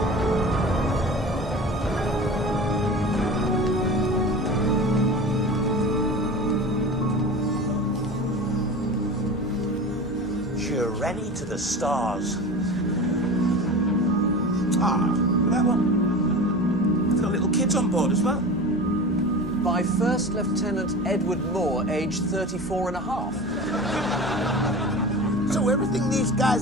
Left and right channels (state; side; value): normal; both; correlation 0.33